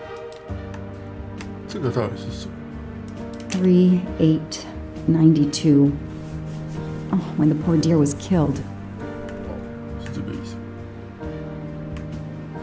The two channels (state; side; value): identical; both; correlation 1.00